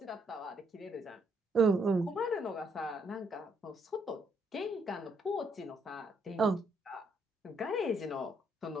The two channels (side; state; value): both; normal; correlation 0.72